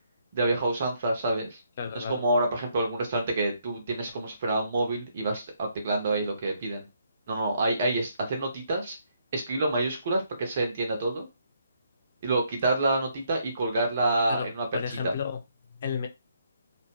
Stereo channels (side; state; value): both; inverted; correlation -0.72